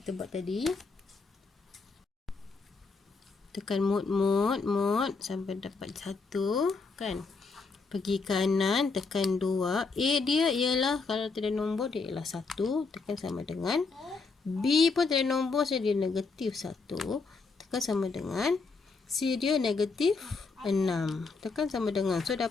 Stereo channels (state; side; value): quieter; right; 4.3 dB